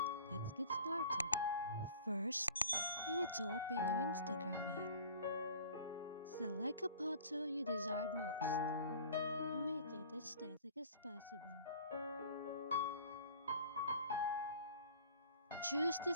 let's get started. First, you need to open your Instagram app. Select a photo you desired most. Make it aesthetic as possible. Choose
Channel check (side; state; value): both; inverted; correlation -0.45